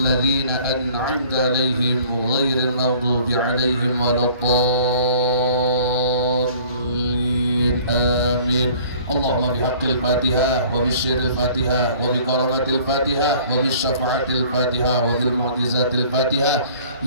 ladzina an'amta 'alaihim ghairil maghdubi 'alaihim waladdallin. Amin. Allahumma bihaqqil Fatihah wa bisyirril Fatihah wa bikaramatil Fatihah wa bisyafa'atil Fatihah wa bil mu'jizatil Fatihah.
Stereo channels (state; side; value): inverted; both; correlation -0.52